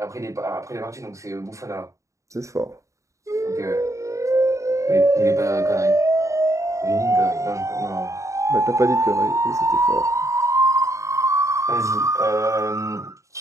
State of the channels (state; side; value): late; left; 0.15 ms